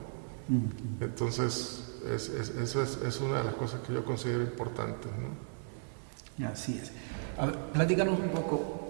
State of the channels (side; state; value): left; silent; 54 dB below the other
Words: Entonces, eso es una de las cosas que yo considero importantes, ¿no? Así es. A ver, platícanos un